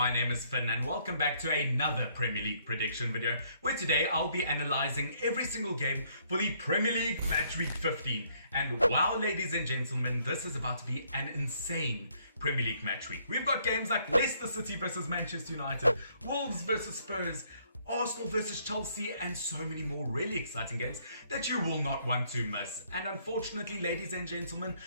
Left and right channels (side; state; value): both; inverted; correlation -0.67